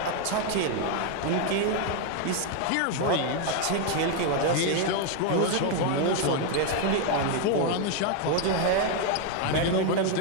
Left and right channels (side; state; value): both; different; correlation 0.01